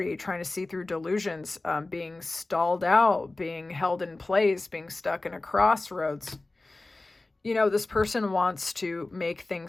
trying to see through delusions, being stalled out, being held in place, being stuck in a crossroads. This person wants to make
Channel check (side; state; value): right; quieter; 3.1 dB